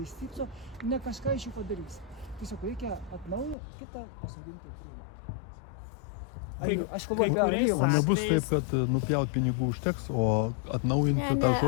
išstypso, ne kažką iš jų padarys. Tiesiog reikia atnaujinti, kitą pasodinti krūmą. Aš kalbu apie alyvą. Nebus taip, kad nupjaut pinigų užteks, o atnaujinti tą žodį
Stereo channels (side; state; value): right; drops out; at 3.6 s